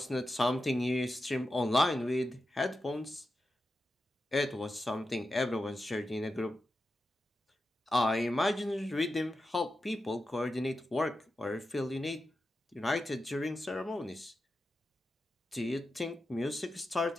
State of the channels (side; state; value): both; normal; correlation 0.90